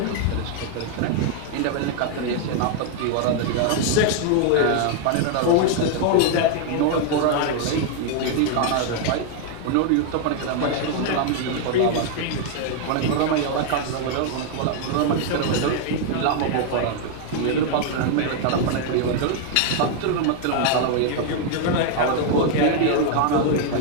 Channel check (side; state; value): both; different; correlation 0.00